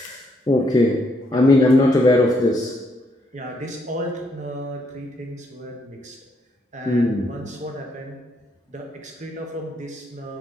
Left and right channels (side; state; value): both; normal; correlation 0.74